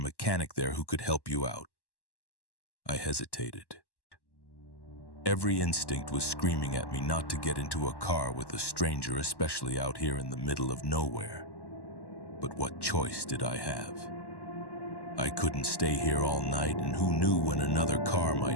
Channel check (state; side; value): late; right; 1.1 ms